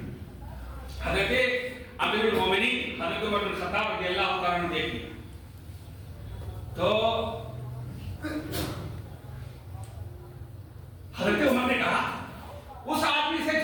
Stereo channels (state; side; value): identical; both; correlation 1.00